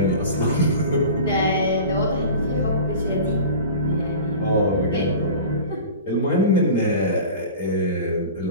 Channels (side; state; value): both; inverted; correlation -0.37